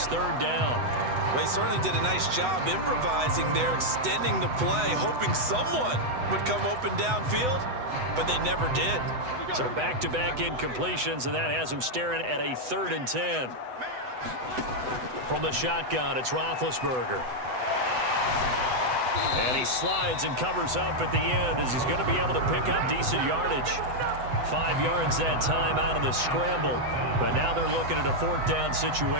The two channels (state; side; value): late; left; 8.0 ms